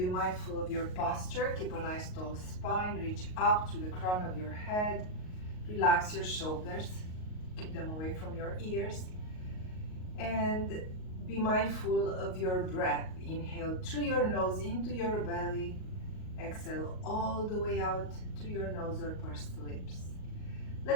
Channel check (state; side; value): late; right; 38 ms